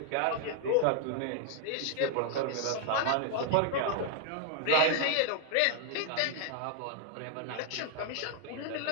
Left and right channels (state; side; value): different; both; correlation 0.00